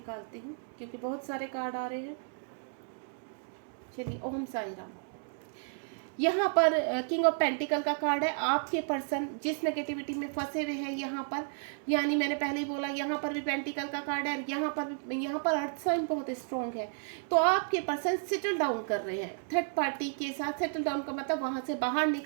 हूँ क्योंकि बहुत सारे कार्ड आ रहे हैं। चलिए, ओम साई राम। यहाँ पर किंग ऑफ पेंटिकल का कार्ड है। आपके पर्सन जिस नेगेटिविटी में फंसे हुए हैं यहाँ पर, यानी मैंने पहले ही बोला, यहाँ पर भी पेंटिकल का कार्ड है, और यहाँ पर अर्थ साइन बहुत स्ट्रॉन्ग है। तो आपके पर्सन सेटल डाउन कर रहे हैं थर्ड पार्टी के साथ। सेटल डाउन का मतलब वहाँ से बाहर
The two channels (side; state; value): left; silent; 56 dB below the other